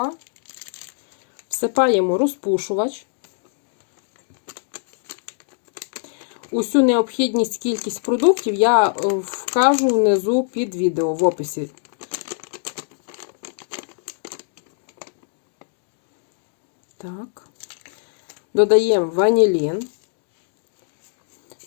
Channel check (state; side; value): silent; right; digital silence